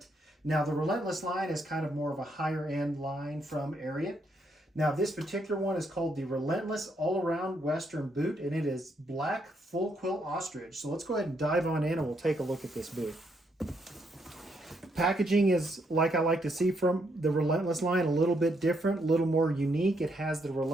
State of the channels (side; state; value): both; normal; correlation 0.75